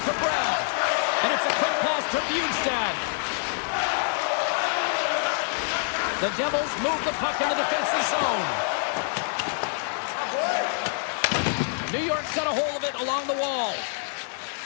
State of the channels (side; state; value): right; silent; 61 dB below the other